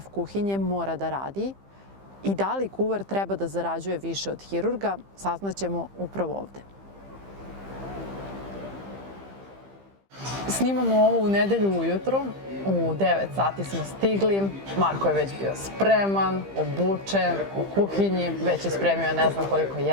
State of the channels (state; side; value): late; left; 15 ms